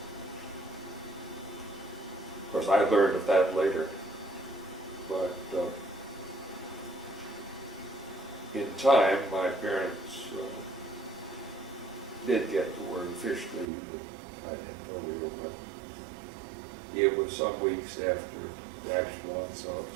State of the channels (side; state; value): left; drops out; at 13.7 s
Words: of course I learned of that later, but in time my parents did get the word officially that I had polio, but it was some weeks after the actual